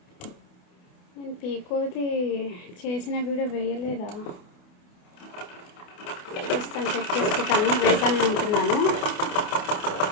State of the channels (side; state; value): right; late; 28 ms